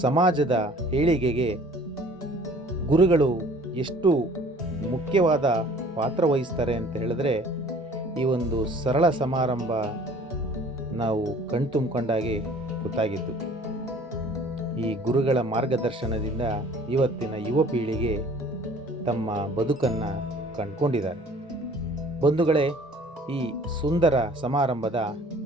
ಸಮಾಜದ ಏಳಿಗೆಗೆ ಗುರುಗಳು ಎಷ್ಟು ಮುಖ್ಯವಾದ ಪಾತ್ರ ವಹಿಸ್ತಾರೆ ಅಂತ ಹೇಳಿದ್ರೆ, ಈ ಒಂದು ಸರಳ ಸಮಾರಂಭ ನಾವು ಕಣ್ತುಂಬಿಕೊಂಡಾಗೆ ಗೊತ್ತಾಗಿದ್ದು. ಈ ಗುರುಗಳ ಮಾರ್ಗದರ್ಶನದಿಂದ ಇವತ್ತಿನ ಯುವ ಪೀಳಿಗೆ ತಮ್ಮ ಬದುಕನ್ನು ಕಂಡುಕೊಂಡಿದ್ದಾರೆ. ಬಂಧುಗಳೇ, ಈ ಸುಂದರ ಸಮಾರಂಭದ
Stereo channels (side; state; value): both; normal; correlation 0.51